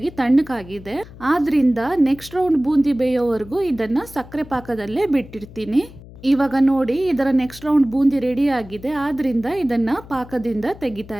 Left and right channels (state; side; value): noise; left; hum, 18 dB below the sound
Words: ತಣ್ಣಗಾಗಿದೆ. ಆದ್ರಿಂದ ನೆಕ್ಸ್ಟ್ ರೌಂಡ್ ಬೂಂದಿ ಬೇಯೋವರೆಗೂ ಇದನ್ನು ಸಕ್ಕರೆ ಪಾಕದಲ್ಲೇ ಬಿಟ್ಟಿರ್ತೀನಿ. ಇವಾಗ ನೋಡಿ, ಇದರ ನೆಕ್ಸ್ಟ್ ರೌಂಡ್ ಬೂಂದಿ ರೆಡಿ ಆಗಿದೆ. ಆದ್ರಿಂದ ಇದನ್ನು ಪಾಕದಿಂದ ತೆಗಿತಾ